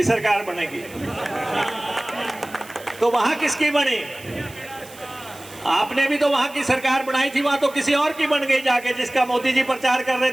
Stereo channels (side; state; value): right; noise; hiss, 20 dB below the sound